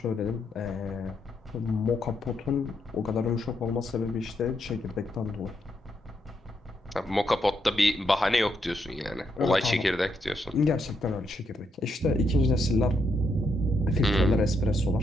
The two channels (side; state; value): both; normal; correlation 0.79